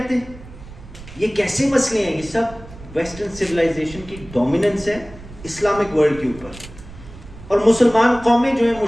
یہ کیسے مسئلے ہیں؟ یہ سب ویسٹرن سیولائزیشن کی ڈومیننس ہے اسلامک ورلڈ کے اوپر، اور مسلمان قومیں جو ہیں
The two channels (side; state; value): right; noise; rumble, 17 dB below the sound